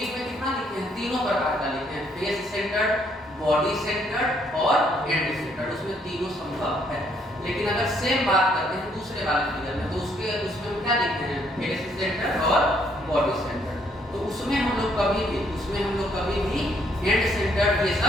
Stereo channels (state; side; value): normal; both; correlation 0.69